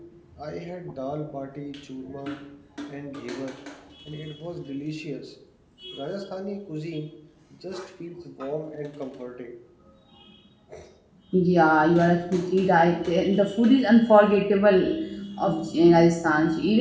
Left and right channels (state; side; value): identical; both; correlation 1.00